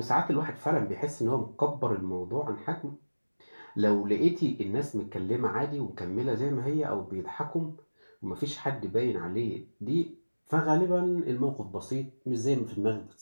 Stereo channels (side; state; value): both; inverted; correlation -1.00